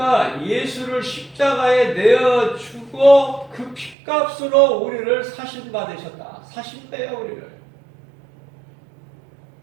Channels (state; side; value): drops out; left; at 4.0 s